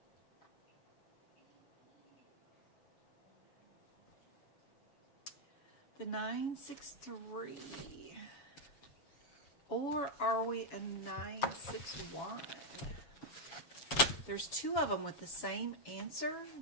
The 963. Or are we a 961? There's 2 of them with the same answer,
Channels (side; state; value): right; late; 7.2 ms